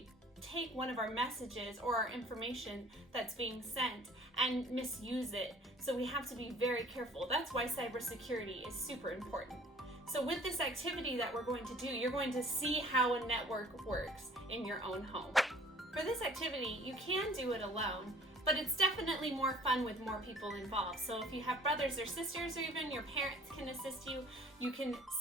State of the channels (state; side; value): normal; both; correlation 0.51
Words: take one of our messages or our information that's being sent and misuse it. So we have to be very careful. That's why cybersecurity is super important. So with this activity that we're going to do, you're going to see how a network works in your own home. For this activity, you can do it alone, but it's definitely more fun with more people involved. So if you have brothers or sisters, or even your parents can assist you, you can